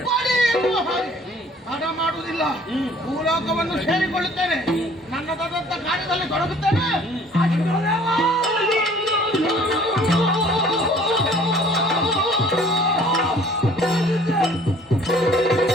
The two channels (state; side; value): normal; both; correlation 0.54